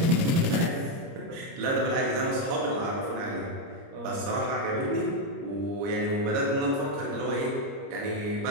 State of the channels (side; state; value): left; late; 29 ms